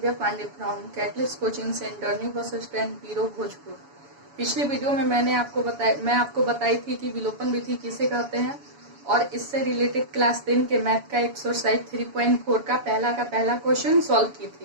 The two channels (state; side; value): late; left; 7.0 ms